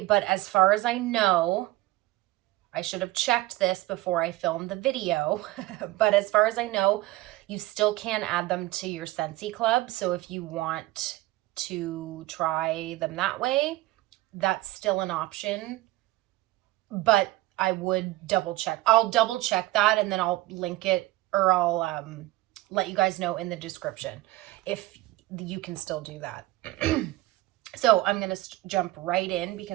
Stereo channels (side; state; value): left; quieter; 18.3 dB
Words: but as far as I know, I should have checked this before I filmed the video, but as far as I know, you still can add them to your Scentsy Club. So if you want to try them that way, that's still an option, but I would double check. I'll double check that and then I'll link it, or I'll let you guys know in the description if you can still do that. So I'm going to jump right in